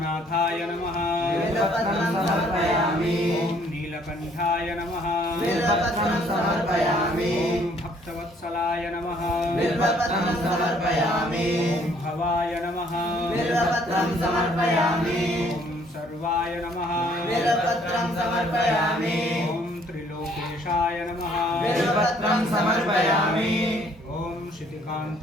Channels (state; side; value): normal; both; correlation 0.62